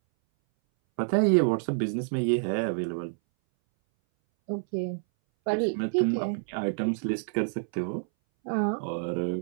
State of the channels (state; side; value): silent; left; 59 dB below the other